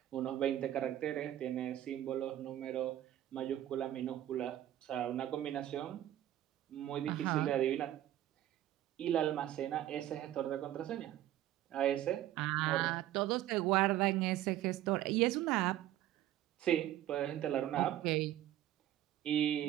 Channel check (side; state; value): left; quieter; 12.9 dB